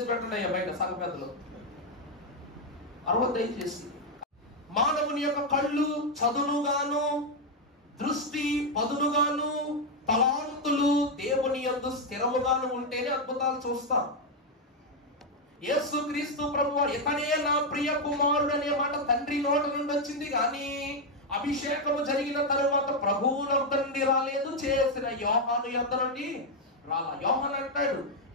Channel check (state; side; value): normal; both; correlation 0.02